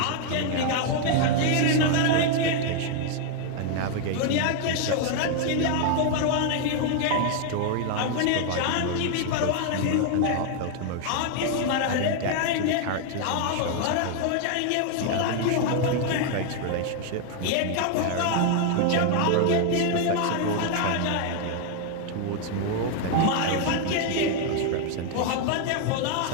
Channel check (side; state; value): both; different; correlation 0.00